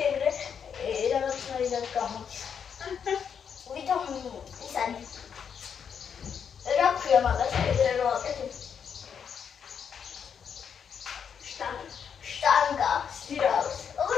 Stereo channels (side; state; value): right; quieter; 7.3 dB